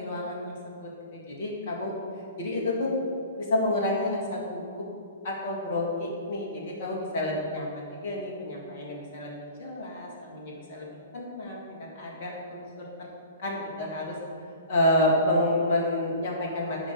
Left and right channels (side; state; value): both; inverted; correlation -0.42